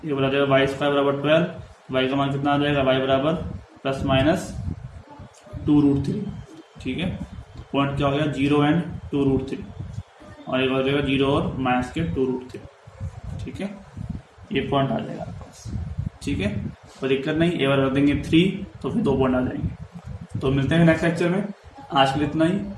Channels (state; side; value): identical; both; correlation 1.00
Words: ए बराबर आ जाएगा y² बराबर 12, y का मान कितना आ जाएगा, y बराबर ±2√3, ठीक है। पॉइंट क्या हो गया, 0 एंड 2√3, और एक हो जाएगा 0 और माइनस के 2√3, ठीक है, ये पॉइंट आ जाएगा आपके पास, ठीक है, कोई दिक्कत नहीं। ए बराबर रख देंगे 3, तो फिर 2 पॉइंट आ जाएंगे। तो मिलते हैं नेक्स्ट लेक्चर में, आज के लिए इतना ही,